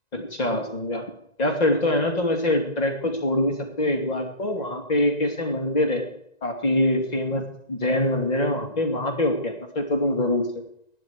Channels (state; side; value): late; right; 1.9 ms